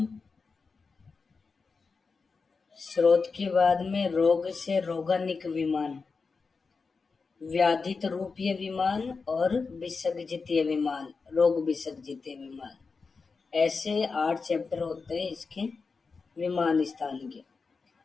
स्रोत के बाद में रोग से रोगानिक विमान, व्याधित रूपीय विमान और विसर्जितीय विमान, रोग विसर्जितीय विमान। ऐसे 8 चैप्टर होते हैं इसके विमान स्थान के।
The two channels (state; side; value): quieter; right; 4.7 dB